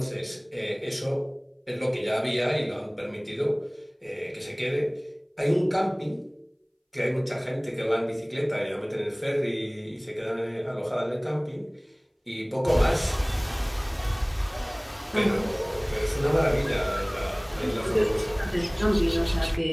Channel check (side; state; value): both; identical; correlation 1.00